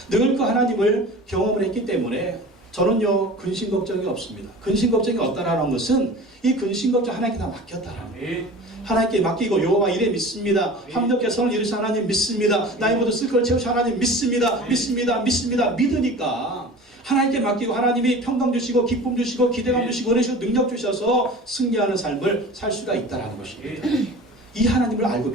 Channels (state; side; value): normal; both; correlation 0.38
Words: 그 하나님을 경험을 했기 때문에 저는요 근심 걱정이 없습니다. 근심 걱정이 없다라는 것은 이 근심 걱정 하나님께 다 맡겼다라는 거예요. 하나님께 맡기고 여호와 이래 믿습니다. 합력해 선을 이루신 하나님 믿습니다. 나의 모든 쓸 것을 채우신 하나님 믿습니다. 믿으니까 하나님께 맡기고 하나님이 평강 주시고 기쁨 주시고 기대감 주시고 은혜 주시고 능력 주셔서 승리하는 삶을 살 수가 있다는 것입니다. 이 하나님을 알고